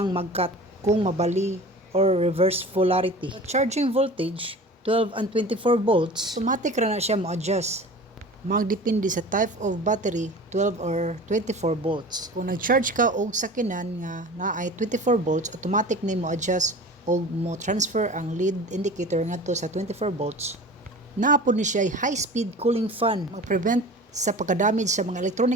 mag-cut kung mabali or reverse polarity. At charging voltage, 12 and 24 volts, automatic ra na siya mo-adjust. Magdepende sa type of battery, 12 or 24 volts. Kung nag-charge ka og sakinan nga naay 24 volts, automatic ni mo adjust og mo transfer ang lead indicator ngadto sa 24 volts. Naapod ni siya high-speed cooling fan, mag-prevent sa pagka-damage sa mga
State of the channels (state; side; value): normal; both; correlation 0.38